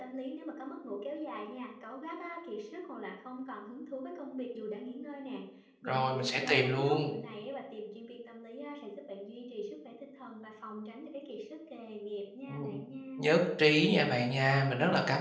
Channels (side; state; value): both; identical; correlation 1.00